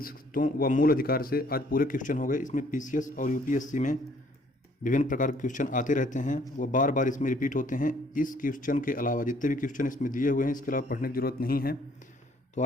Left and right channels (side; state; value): both; normal; correlation 0.62